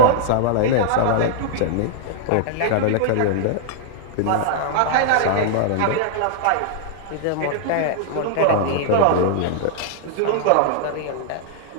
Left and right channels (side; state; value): both; different; correlation -0.01